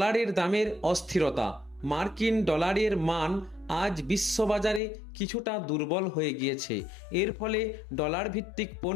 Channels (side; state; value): right; drops out; at 4.8 s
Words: দামের অস্থিরতা, মার্কিন ডলারের মান আজ বিশ্ববাজারে কিছুটা দুর্বল হয়ে গিয়েছে। এর ফলে ডলার ভিত্তিক